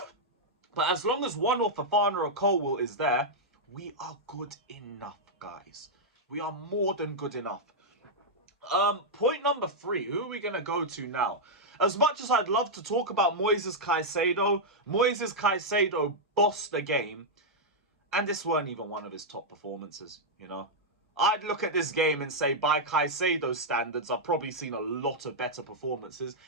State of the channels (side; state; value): both; normal; correlation -0.05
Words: But as long as one or Fofana or Colwill is there, we are good enough, guys. We are more than good enough. Point number 3. Who are we going to go to now? As much as I'd love to talk about Moises Caicedo bossed the game. And this weren't even one of his top performances, you know. I'd look at this game and say, by Caicedo's standards, I've probably seen a lot of better performances.